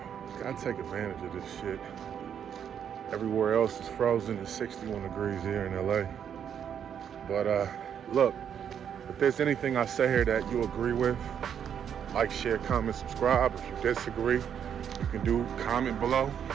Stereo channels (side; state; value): left; quieter; 8.5 dB